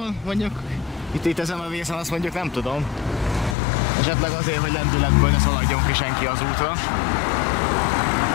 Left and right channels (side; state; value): right; drops out; at 3.6 s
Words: mondjuk itt ezen a vészen, azt mondjuk nem tudom. Esetleg azért, hogy lendületből ne szaladjon ki senki az útra.